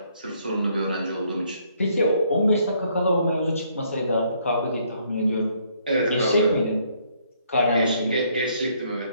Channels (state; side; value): inverted; both; correlation -0.68